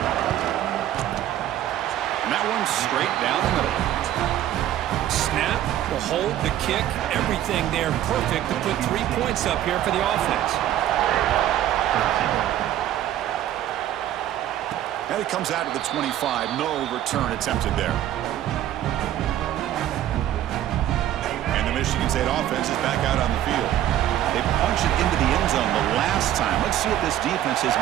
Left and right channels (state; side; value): quieter; left; 12.2 dB